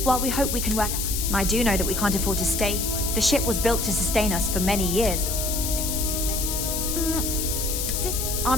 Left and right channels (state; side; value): noise; left; hiss, 2 dB below the sound